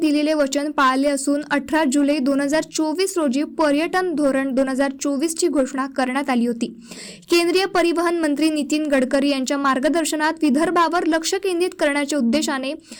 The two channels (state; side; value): identical; both; correlation 1.00